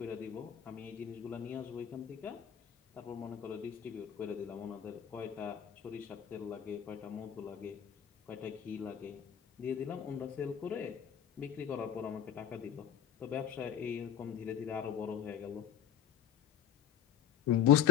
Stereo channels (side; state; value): right; quieter; 9.5 dB